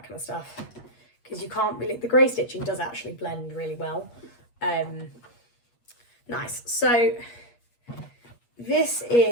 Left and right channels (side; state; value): right; late; 8.4 ms